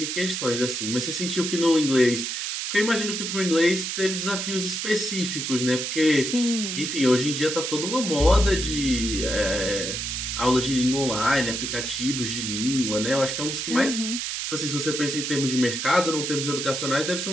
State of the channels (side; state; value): right; noise; hiss, 3 dB below the sound